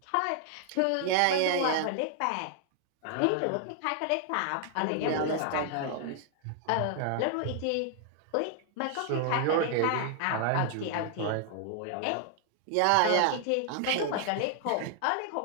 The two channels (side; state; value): both; different; correlation 0.00